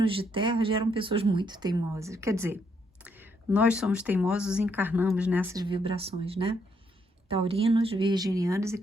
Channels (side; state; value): both; normal; correlation 0.74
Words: de terra geram pessoas muito teimosas. Quer dizer, nós somos teimosos e encarnamos nessas vibrações, né? Taurinos, virginianos e